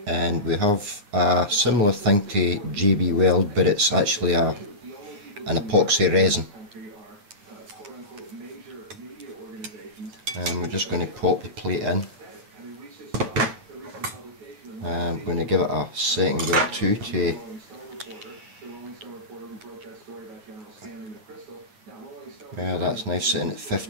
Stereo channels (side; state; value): left; late; 9.5 ms